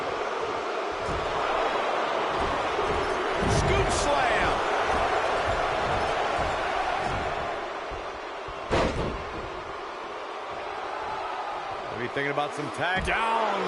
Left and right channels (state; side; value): identical; both; correlation 1.00